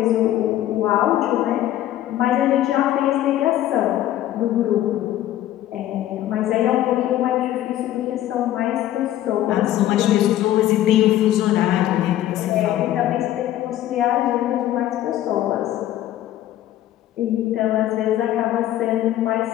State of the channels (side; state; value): right; quieter; 13.1 dB